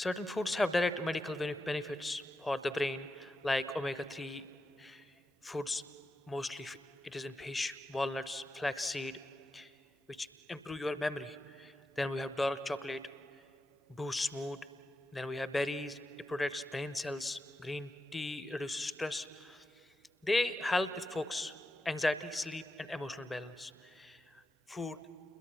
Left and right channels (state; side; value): normal; both; correlation 0.88